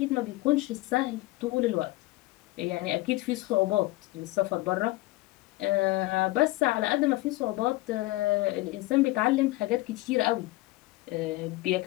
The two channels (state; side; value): quieter; right; 19.4 dB